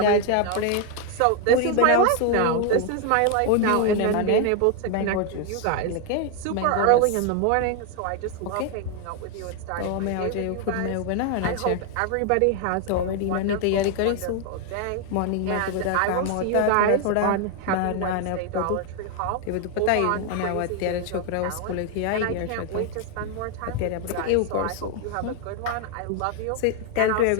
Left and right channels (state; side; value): different; both; correlation 0.01